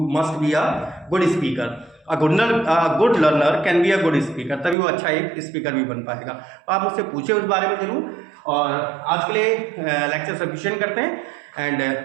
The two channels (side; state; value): left; drops out; at 4.8 s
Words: must be a good speaker, a good learner can be a good speaker, तभी वो अच्छा एक स्पीकर भी बन पाएगा। तो आप मुझसे पूछे उस बारे में जरूर। और आज के लिए लेक्चर सफिशिएंट करते हैं एंड